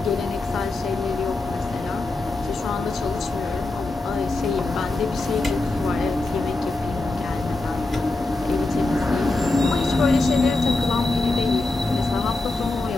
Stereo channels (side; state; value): right; quieter; 3.1 dB